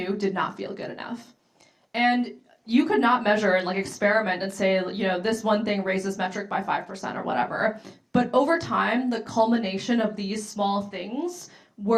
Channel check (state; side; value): identical; both; correlation 1.00